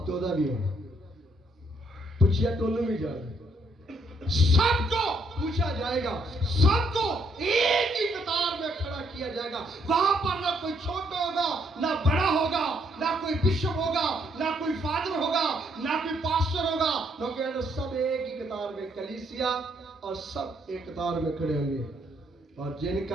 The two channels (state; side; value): normal; both; correlation 0.71